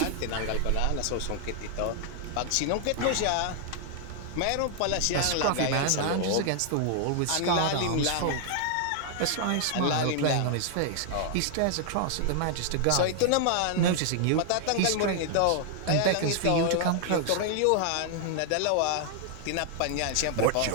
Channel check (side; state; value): both; different; correlation 0.00